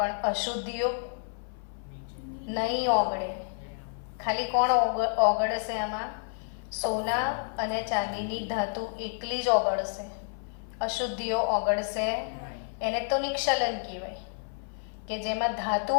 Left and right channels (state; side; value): silent; right; 57 dB below the other